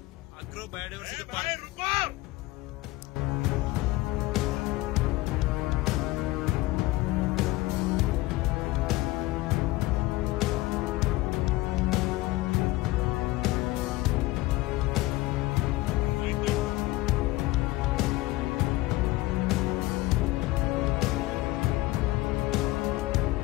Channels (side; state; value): right; quieter; 19.1 dB